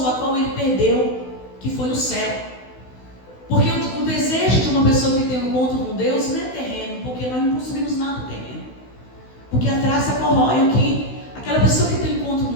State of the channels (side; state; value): right; late; 16 ms